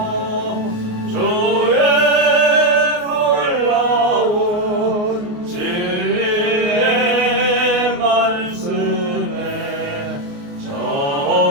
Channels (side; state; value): left; late; 28 ms